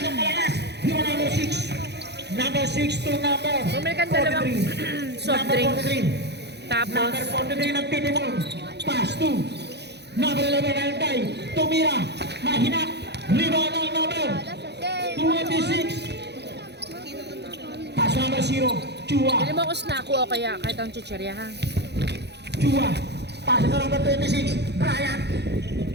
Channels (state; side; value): late; left; 0.49 ms